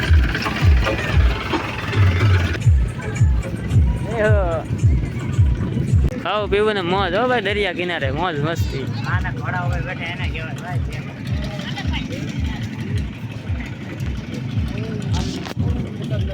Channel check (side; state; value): both; identical; correlation 1.00